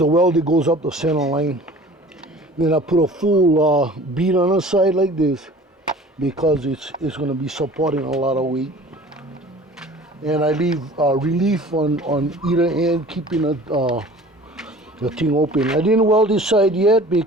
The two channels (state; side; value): normal; both; correlation 0.45